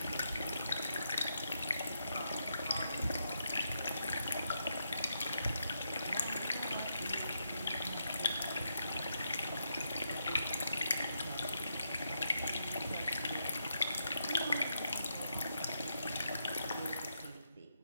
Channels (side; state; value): both; inverted; correlation -0.82